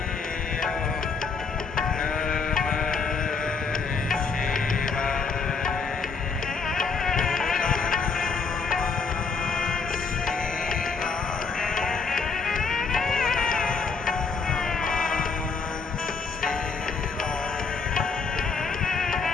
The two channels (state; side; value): quieter; right; 4.9 dB